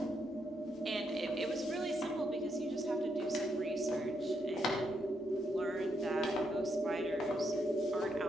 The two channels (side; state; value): both; normal; correlation 0.79